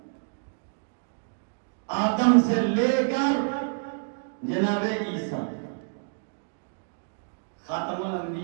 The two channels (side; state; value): left; silent; 59 dB below the other